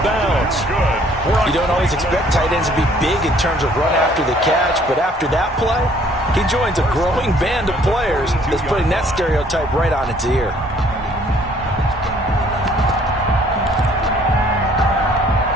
bounds. You don't always expect tight ends to be big in terms of run after the catch, but after that play, he joins a growing band of players that's putting that stereotype right on its ear.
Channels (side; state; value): both; normal; correlation 0.60